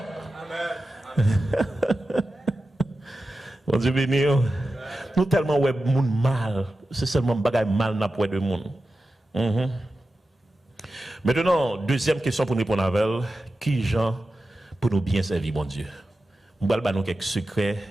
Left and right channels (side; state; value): both; normal; correlation 0.93